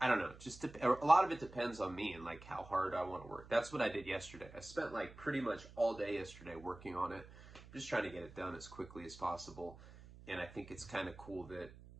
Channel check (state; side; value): noise; right; hum, 18 dB below the sound